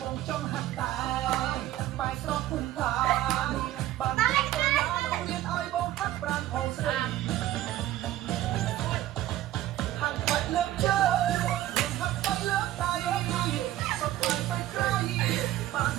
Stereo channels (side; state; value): left; quieter; 14.1 dB